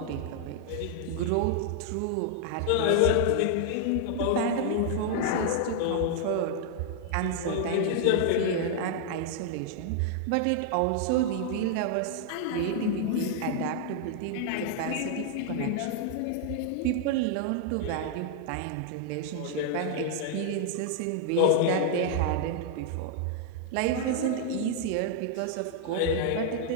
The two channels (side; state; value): both; different; correlation 0.00